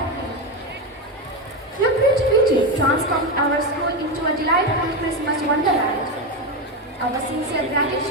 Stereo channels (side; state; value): both; normal; correlation 0.13